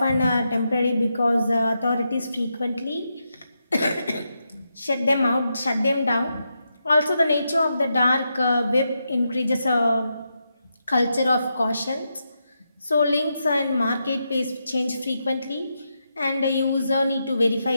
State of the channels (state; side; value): inverted; both; correlation -0.85